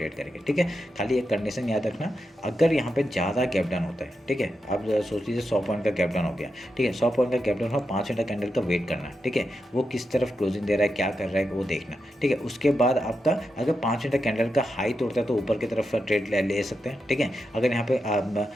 करेंगे। ठीक है, खाली एक कंडीशन याद रखना, अगर यहाँ पे ज़्यादा गैप डाउन होता है, ठीक है, आप सोच लीजिए 100 पॉइंट का गैप डाउन हो गया। ठीक है, 100 पॉइंट का गैप डाउन हो, 5 मिनट कैंडल का वेट करना। ठीक है, वो किस तरफ क्लोजिंग दे रहा है, क्या कर रहा है वो देखना। ठीक है, उसके बाद आपका अगर 5 मिनट कैंडल का हाई तोड़ता है तो ऊपर की तरफ ट्रेड ले सकते हैं। ठीक है, अगर यहाँ पे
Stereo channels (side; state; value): both; normal; correlation 0.87